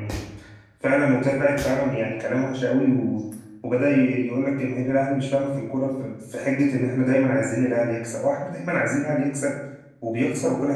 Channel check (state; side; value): identical; both; correlation 1.00